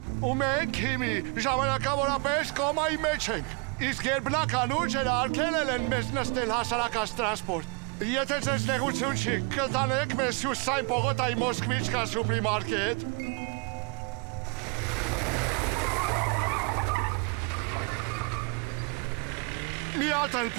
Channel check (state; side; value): quieter; left; 33.8 dB